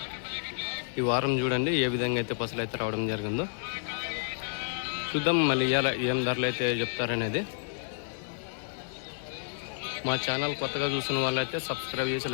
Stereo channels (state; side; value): silent; right; 58 dB below the other